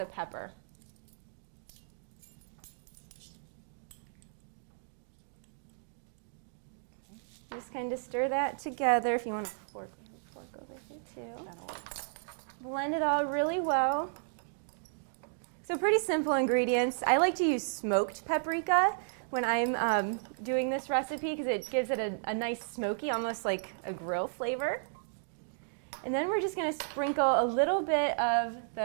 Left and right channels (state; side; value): silent; left; digital silence